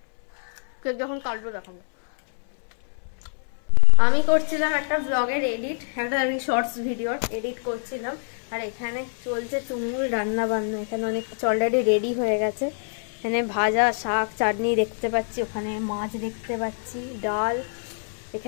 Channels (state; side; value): silent; right; 61 dB below the other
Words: কেক যখন কাটবো দেখাবো। আমি করছিলাম একটা ব্লগের এডিট, একটা শর্টস ভিডিওর এডিট করছিলাম। আর এখানে চলছে তুমুল রান্না বান্না। এখানে অনেক অলরেডি রেডি হয়ে গেছে। এখানে ভাজা, শাক, চাটনি দেখতে পাচ্ছি, ওখানে মাছ দেখতে পাচ্ছি, ডাল।